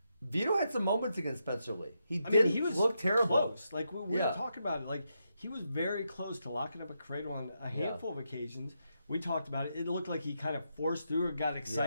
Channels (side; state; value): both; inverted; correlation -0.83